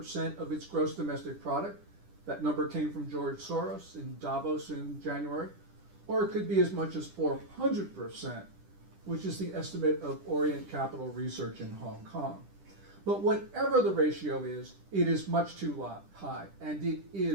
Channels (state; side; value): late; left; 10 ms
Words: of its gross domestic product. That number came from George Soros in Davos in January. Or it could be as much as 400%, which is the estimate of Orient Capital Research in Hong Kong. But whatever the ratio is, it is much too high, and it